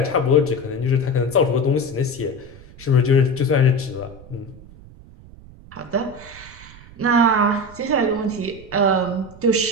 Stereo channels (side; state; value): right; noise; rumble, 20 dB below the sound